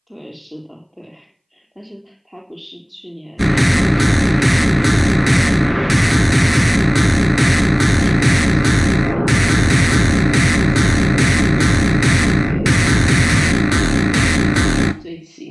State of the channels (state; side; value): identical; both; correlation 1.00